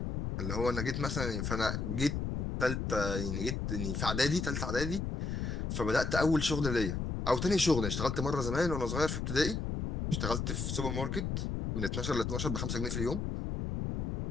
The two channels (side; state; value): left; noise; rumble, 2 dB below the sound